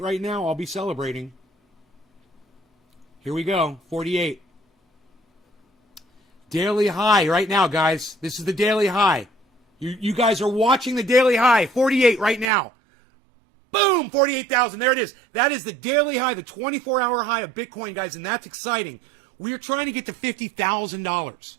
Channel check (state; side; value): drops out; left; at 12.5 s